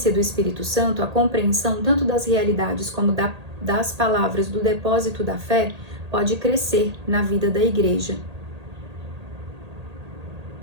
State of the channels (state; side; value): late; left; 1.8 ms